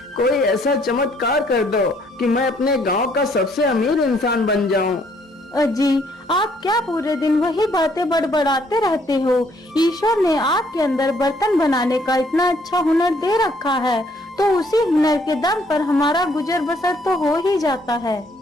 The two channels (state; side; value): normal; both; correlation 0.66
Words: कोई ऐसा चमत्कार कर दो कि मैं अपने गांव का सबसे अमीर इंसान बन जाऊं। अजी, आप क्या पूरे दिन वही बातें बड़बड़ाते रहते हो? ईश्वर ने आपके अंदर बर्तन बनाने का इतना अच्छा हुनर दे रखा है, तो उसी हुनर के दम पर हमारा गुजर बसर तो हो ही जाता है।